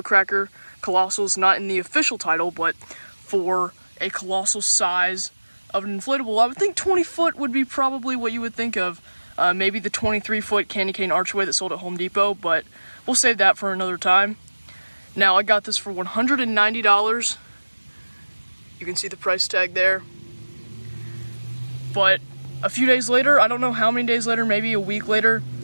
Colossal is not in the official title, but for a colossal size of an inflatable, I would think 20 foot would be probably what you would think of. Maybe the 23-foot candy cane archway that sold at Home Depot, but we'll save that for another time. Now, I got this for $190. You can see the price tag there. But a few days later, I don't know how many days later, maybe a week later,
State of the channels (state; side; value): inverted; both; correlation -1.00